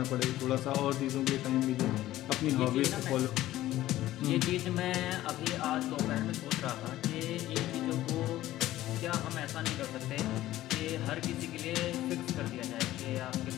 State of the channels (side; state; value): right; quieter; 15.0 dB